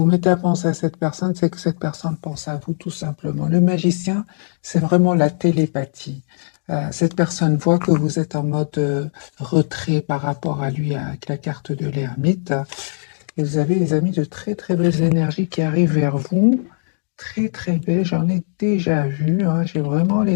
mettez à penser à cette personne, c'est que cette personne pense à vous tout simplement. Le magicien, c'est vraiment la télépathie. Cette personne voit que vous êtes en mode retrait par rapport à lui avec la carte de l'ermite. Et vous avez, les amis, de très très belles énergies qui arrivent vers vous. Très très belles, j'en ai déjà vu, hein. J'ai vraiment,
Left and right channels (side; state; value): right; silent; digital silence